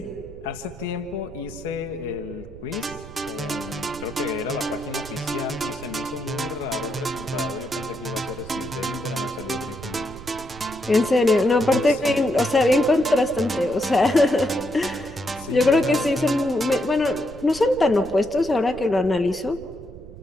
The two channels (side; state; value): right; noise; rumble, 17 dB below the sound